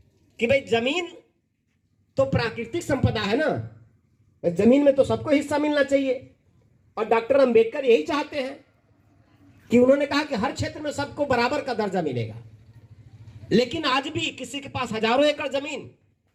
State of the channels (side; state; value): both; identical; correlation 1.00